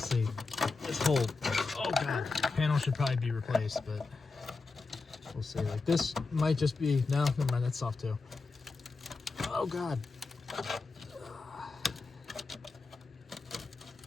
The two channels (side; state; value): right; quieter; 4.0 dB